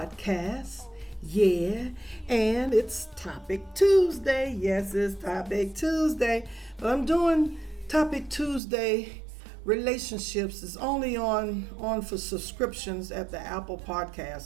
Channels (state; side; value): drops out; left; at 8.6 s